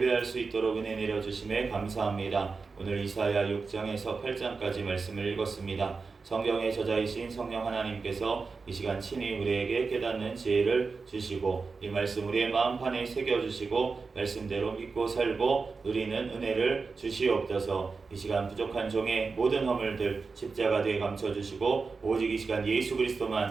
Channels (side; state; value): left; quieter; 4.5 dB